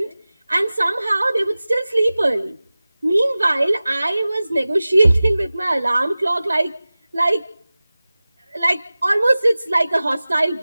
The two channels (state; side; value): inverted; both; correlation -0.97